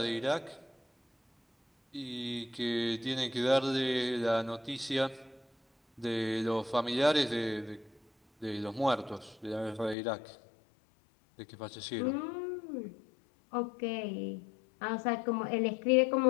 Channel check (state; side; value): drops out; right; at 10.0 s